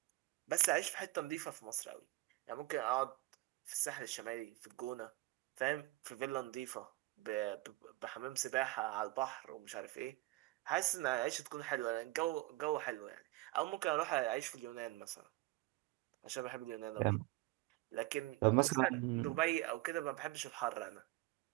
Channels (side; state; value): left; quieter; 19.5 dB